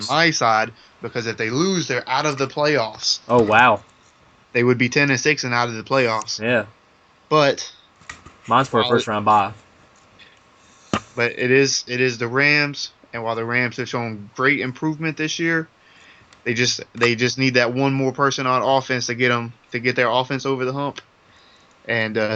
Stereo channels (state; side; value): identical; both; correlation 1.00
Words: my side because if they lose, they're out of the playoffs. Oh wow! They would be 10-6 and out of the playoffs. Yeah. But mine's for a first round bye. But it is the Rams, and while the Rams have shown great improvement this year, they just need that one more person on offense to get their offense over the hump. And